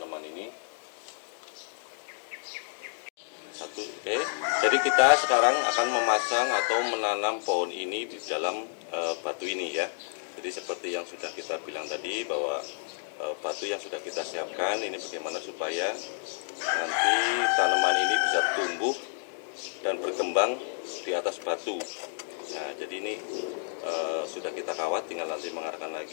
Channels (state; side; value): silent; right; digital silence